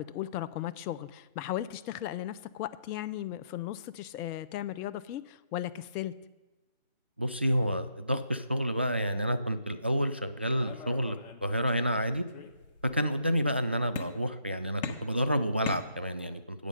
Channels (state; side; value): inverted; both; correlation -0.72